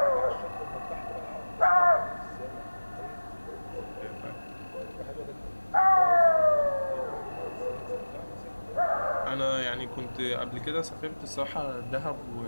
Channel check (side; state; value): both; inverted; correlation -1.00